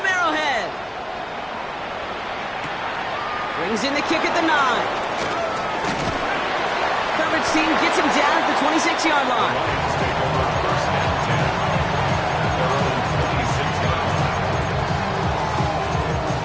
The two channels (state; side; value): identical; both; correlation 1.00